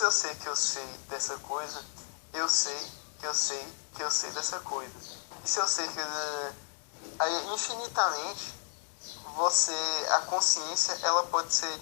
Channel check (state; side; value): silent; right; digital silence